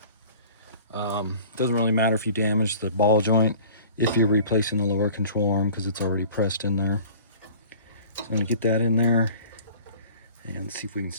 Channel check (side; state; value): both; inverted; correlation -0.46